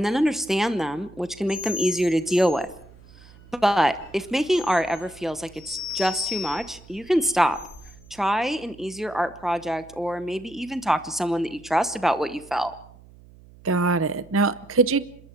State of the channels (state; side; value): noise; right; hum, 23 dB below the sound